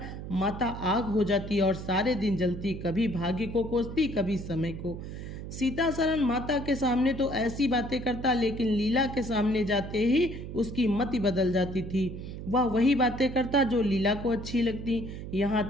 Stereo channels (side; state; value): right; noise; hum, 9 dB below the sound